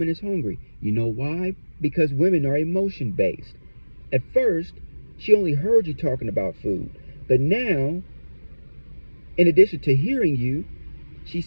is hungry. You know why? Because women are emotion-based. At first, she only heard you talking about food. But now, in addition to hearing you, she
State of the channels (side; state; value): both; inverted; correlation -1.00